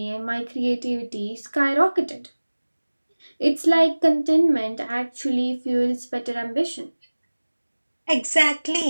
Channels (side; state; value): both; inverted; correlation -1.00